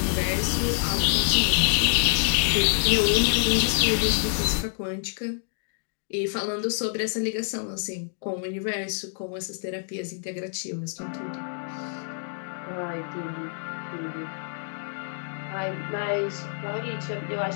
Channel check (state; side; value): silent; right; digital silence